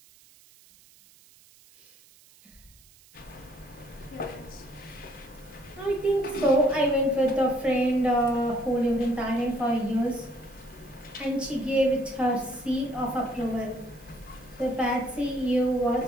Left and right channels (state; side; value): noise; right; hiss, 26 dB below the sound